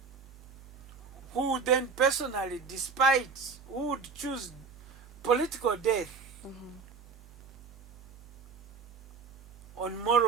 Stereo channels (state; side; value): quieter; left; 5.1 dB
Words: who then personally, who would choose political death on